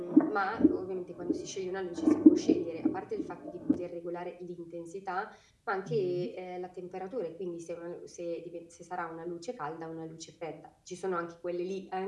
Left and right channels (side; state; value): both; identical; correlation 1.00